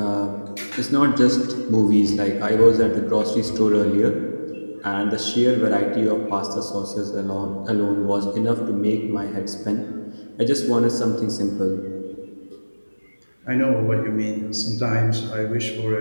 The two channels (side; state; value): both; inverted; correlation -1.00